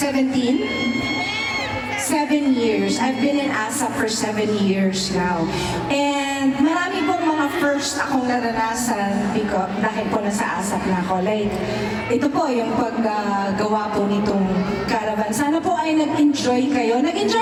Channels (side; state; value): both; identical; correlation 1.00